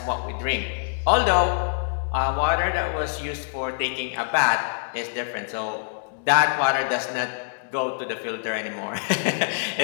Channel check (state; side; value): silent; right; digital silence